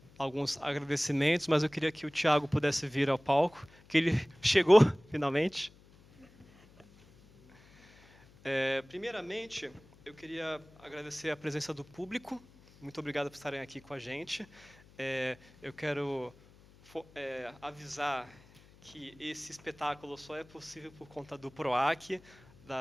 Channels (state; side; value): noise; left; hum, 26 dB below the sound